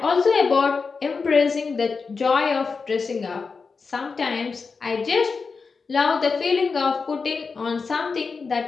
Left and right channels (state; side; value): quieter; right; 4.8 dB